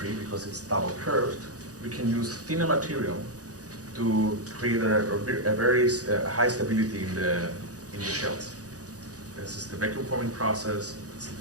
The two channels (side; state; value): left; late; 0.67 ms